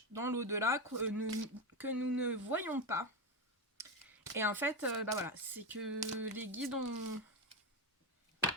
dans l'au-delà que nous ne voyons pas. Et en fait, bah voilà, c'est que les guides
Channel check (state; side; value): normal; both; correlation 0.12